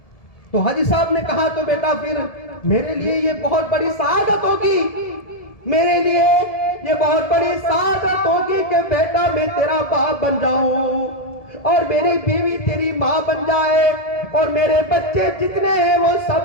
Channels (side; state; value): right; late; 1.7 ms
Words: تو حاجی صاحب نے کہا تو بیٹا پھر میرے لیے یہ بہت بڑی سعادت ہوگی، میرے لیے یہ بہت بڑی سعادت ہوگی کہ بیٹا میں تیرا باپ بن جاؤں اور میری بیوی تیری ماں بن جائے اور میرے بچے جتنے ہیں وہ